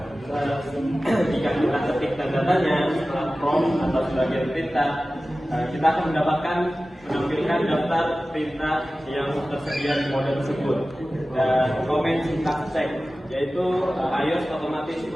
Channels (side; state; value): both; normal; correlation 0.96